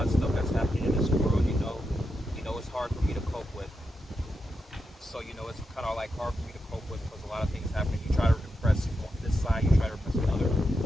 of stuff that's happening in this world, it's hard for me to cope with. So, it's kind of like hard for me to cope with because a lot of things happen. You try to repress this side, you try to repress another.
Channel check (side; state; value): both; normal; correlation 0.86